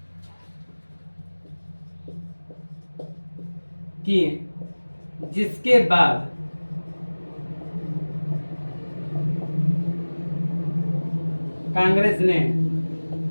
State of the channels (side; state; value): both; inverted; correlation -1.00